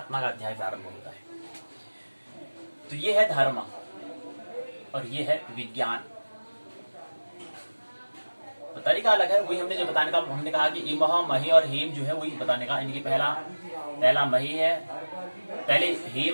का अध्याय प्रारंभ होता है। तो ये है धर्म और ये है विज्ञान। तो तरीका अलग है। वही हमने जो बताने का, हमने कहा कि इमह, मही और हेम जो है वही बताने का। इनकी पहला मही है, पहले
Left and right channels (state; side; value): inverted; both; correlation -1.00